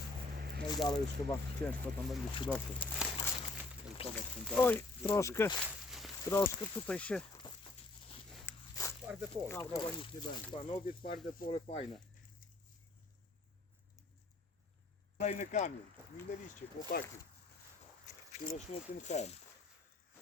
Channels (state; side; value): quieter; right; 3.0 dB